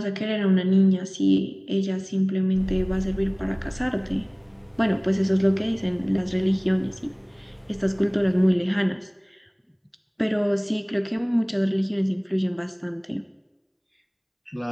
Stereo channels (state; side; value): identical; both; correlation 1.00